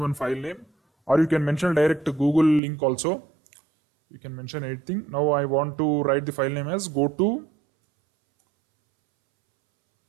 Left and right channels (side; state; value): left; drops out; at 2.6 s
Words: file name, or you can mention direct Google link also. You can mention anything. Now I want to write the file name as go to